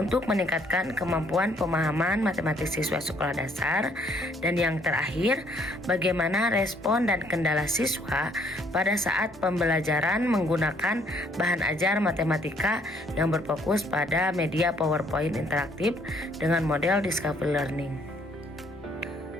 meningkatkan kemampuan pemahaman matematis siswa sekolah dasar. Dan yang terakhir, bagaimana respon dan kendala siswa pada saat pembelajaran menggunakan bahan ajar matematika yang berfokus pada media PowerPoint interaktif dengan model discovery learning.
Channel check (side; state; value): both; normal; correlation 0.65